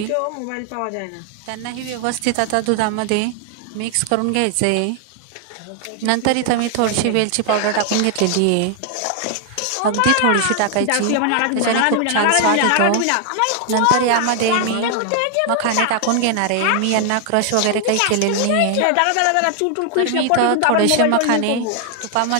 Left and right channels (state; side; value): different; both; correlation 0.00